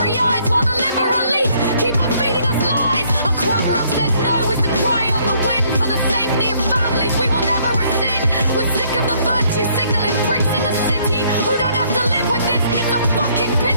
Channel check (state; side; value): inverted; both; correlation -0.66